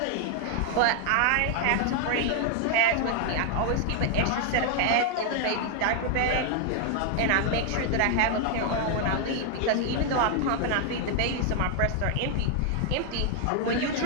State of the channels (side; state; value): both; different; correlation 0.00